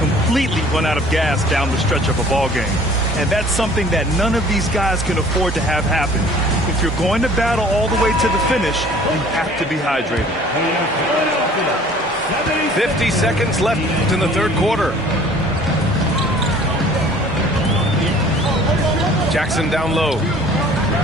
run out of gas down the stretch of a ball game. And that's something that none of these guys can afford to have happen. If you're going to battle all the way to the finish, you have to be hydrated. 50 seconds left in the third quarter. Jackson down low.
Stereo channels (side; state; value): both; normal; correlation 0.51